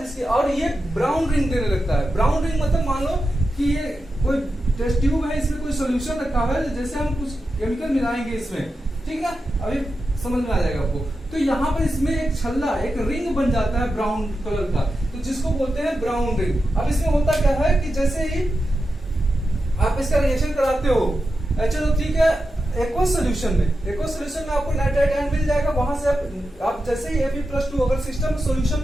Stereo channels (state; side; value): normal; both; correlation 0.90